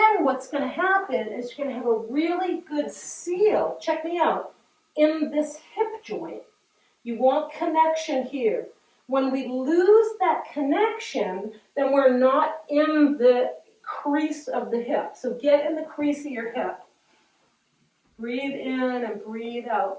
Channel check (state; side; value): identical; both; correlation 1.00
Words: what's going to happen is you're going to have a really good seal, check me out, in this hip joint. You want connection here. When we lose that connection, then we're not in the crease of the hip. So get in the crease of your hip. Breathe in and breathe